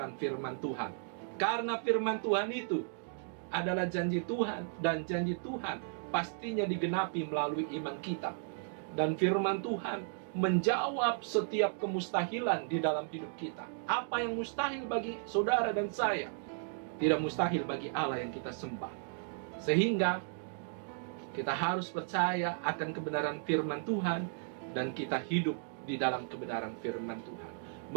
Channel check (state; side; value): silent; left; digital silence